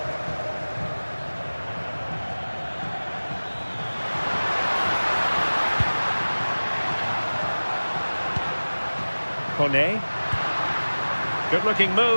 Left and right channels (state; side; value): inverted; both; correlation -1.00